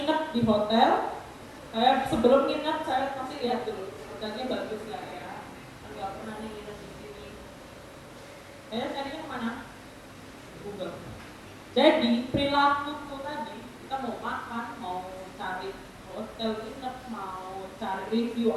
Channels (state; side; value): identical; both; correlation 1.00